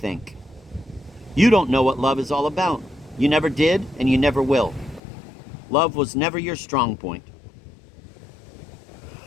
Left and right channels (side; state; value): right; drops out; at 5.0 s